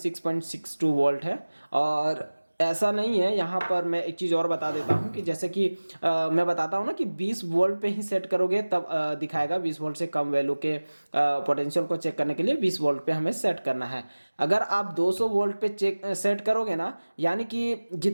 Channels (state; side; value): inverted; both; correlation -1.00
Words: वोल्ट है। और ऐसा नहीं है, यहाँ पर मैं एक चीज़ और बता देता हूँ कि जैसे कि मैं बताता हूँ ना कि 20 वोल्ट पे ही सेट करोगे तब दिखाएगा। 20 वोल्ट से कम वैल्यू के पोटेंशियल को चेक करने के लिए 20 वोल्ट पे हमें सेट करना है। अगर आप 200 वोल्ट पे सेट करोगे ना, यानी कि